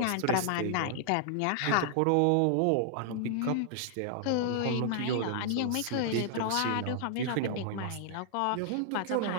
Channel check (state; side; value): different; both; correlation -0.01